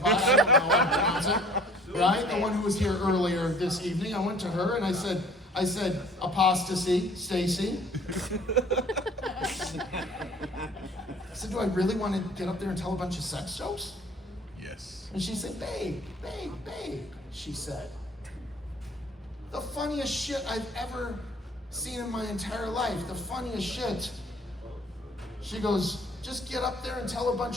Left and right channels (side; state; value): both; normal; correlation 0.52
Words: I don't know how to pronounce it, right? The one who was here earlier this evening. I went to her and I said, apostasy, Stacie. I said, do I really want to get up there and tell a bunch of sex jokes? Yes. And she said, babe, she said, the funniest shit I've ever seen in my entire life, the funniest shit. She goes, just get up there and tell a